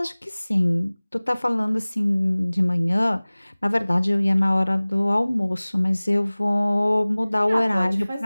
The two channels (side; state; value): both; inverted; correlation -0.99